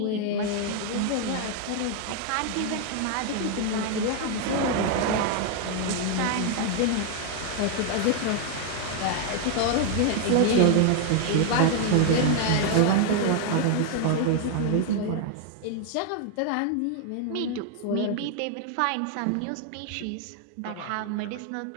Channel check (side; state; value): both; different; correlation 0.00